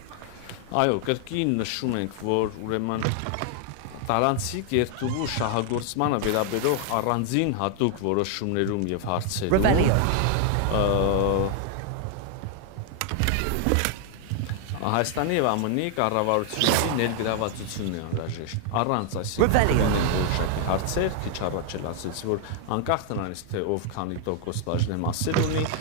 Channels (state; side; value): different; both; correlation 0.00